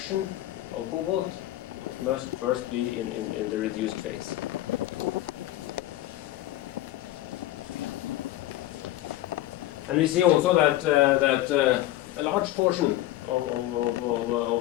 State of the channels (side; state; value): right; quieter; 15.1 dB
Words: of cobalt, it must first be in the reduced phase. And we see also that a large portion of